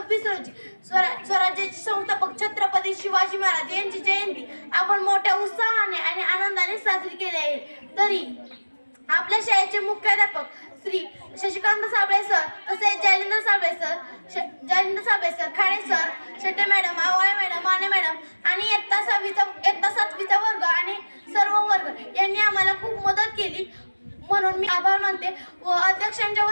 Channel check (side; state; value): both; inverted; correlation -1.00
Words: रोजी स्वराज्याचे संस्थापक छत्रपती शिवाजी महाराज यांची जयंती आपण मोठ्या उत्साहाने आणि आनंदाने साजरी केली आहे. तरी आपल्या शाळेचे मुख्याध्यापक श्री शशिकांत साबळे सर, तसेच Jalindar Sable sir, Khade sir, Shete madam, Awale madam, Mane madam आणि इयत्ता 7वीचा वर्ग आणि सर्व वर्ग यांनी आम्हाला खूप मदत केली, म्हणून मी आभार मानते व अध्यक्षांच्या